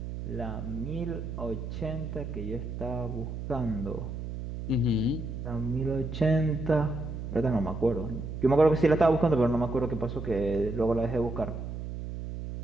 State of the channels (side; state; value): right; noise; hum, 7 dB below the sound